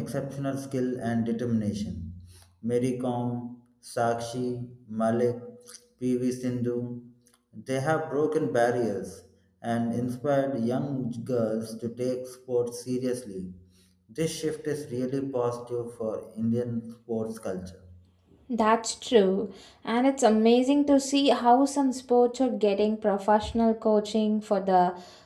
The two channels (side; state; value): both; identical; correlation 1.00